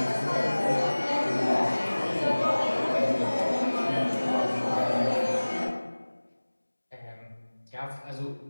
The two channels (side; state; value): both; inverted; correlation -1.00